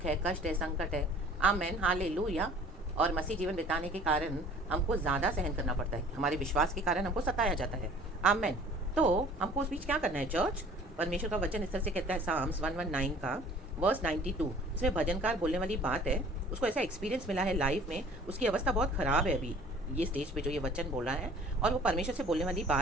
है, कष्ट है, संकट है। Amen hallelujah. और मसीह जीवन बिताने के कारण हमको ज़्यादा सहन करना पड़ता है, हमारे विश्वास के कारण हमको सताया जाता है। आमेन। तो हमको उस बीच क्या करना है चर्च? परमेश्वर का वचन इस तरह से कहता है, साम्स 119 का वर्स 92। इसमें भजनकार बोलने वाली बात है, उसको ऐसा एक्सपीरियंस मिला है लाइफ में, उसकी अवस्था बहुत ख़राब है अभी ये स्टेज पे जो ये वचन बोल रहा है, और वो परमेश्वर से बोलने वाली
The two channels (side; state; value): both; normal; correlation 0.50